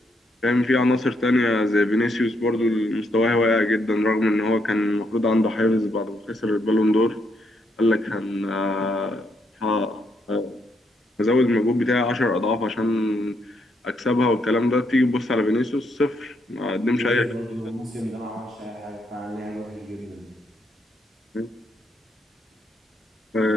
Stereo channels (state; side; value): normal; both; correlation 0.76